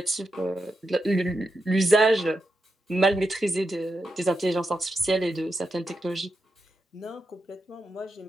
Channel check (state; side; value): normal; both; correlation 0.86